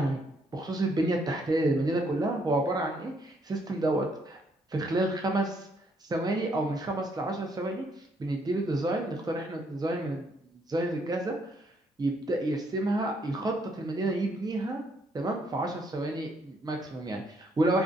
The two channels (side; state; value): both; normal; correlation 0.71